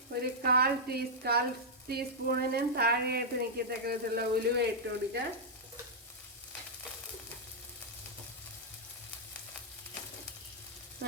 ഒരു 1/4 ടീസ്പൂണിനും താഴെയായിട്ട് നിൽക്കത്തക്ക വിധത്തിലുള്ള ഉലുവ ഇട്ട് കൊടുക്കാം.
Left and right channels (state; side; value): normal; both; correlation -0.08